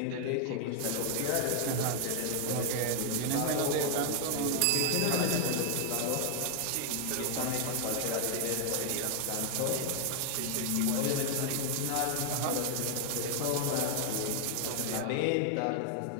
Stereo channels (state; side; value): different; both; correlation 0.00